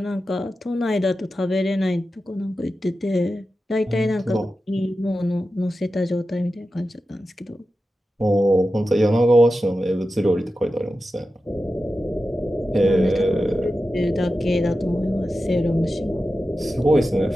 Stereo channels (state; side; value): normal; both; correlation 0.92